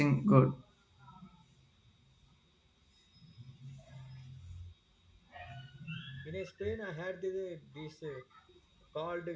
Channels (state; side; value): identical; both; correlation 1.00